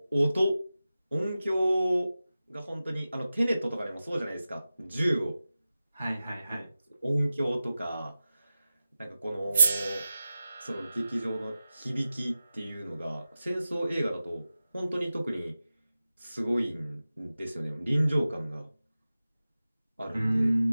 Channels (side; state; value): both; inverted; correlation -0.95